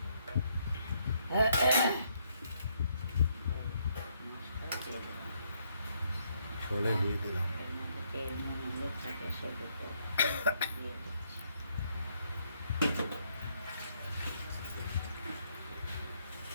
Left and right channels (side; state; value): both; inverted; correlation -0.74